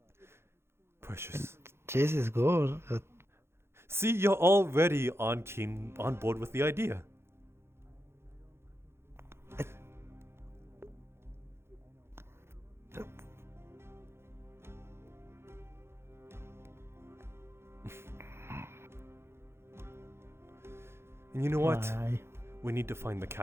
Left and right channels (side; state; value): left; late; 0.12 ms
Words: Precious. Cheese is good. See, you're already on board with the idea. And you know what? Why? We need to find the